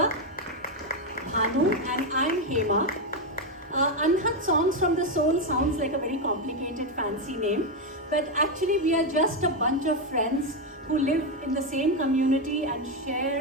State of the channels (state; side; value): normal; both; correlation 0.07